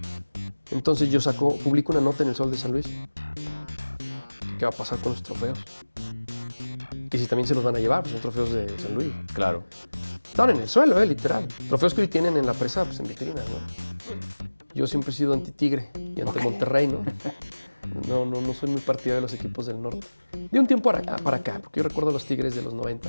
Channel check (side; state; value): both; inverted; correlation -1.00